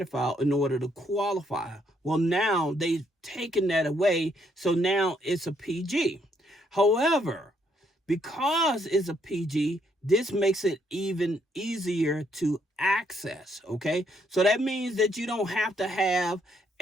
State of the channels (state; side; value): normal; both; correlation 0.72